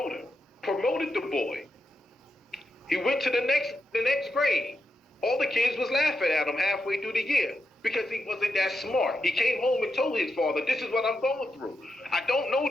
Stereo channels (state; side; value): normal; both; correlation 0.86